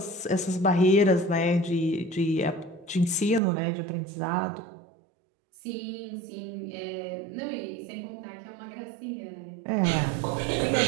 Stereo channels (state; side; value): drops out; left; at 3.4 s